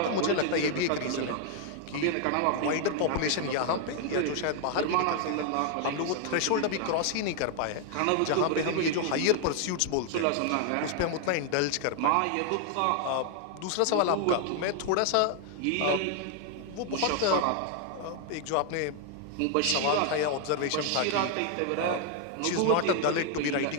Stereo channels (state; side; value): different; both; correlation 0.00